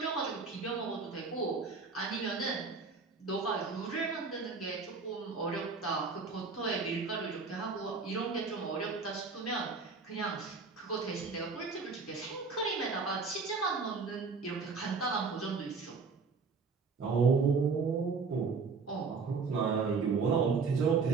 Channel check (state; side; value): quieter; left; 4.7 dB